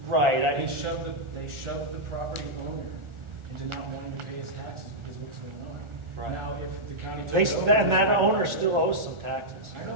right. They shoved the property owner into not wanting to pay his taxes because of what's going on. Right. Now, if the county They, took it over, and that owner still owes some taxes. I know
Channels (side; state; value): left; late; 1.4 ms